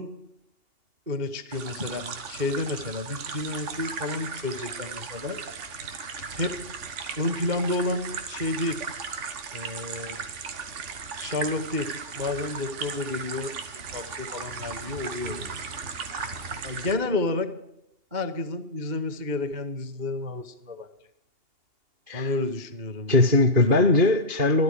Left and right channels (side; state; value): left; late; 2.8 ms